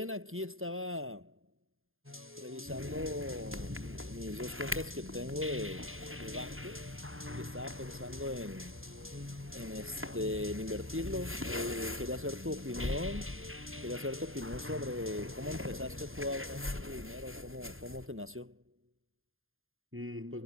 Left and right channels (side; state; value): left; late; 0.60 ms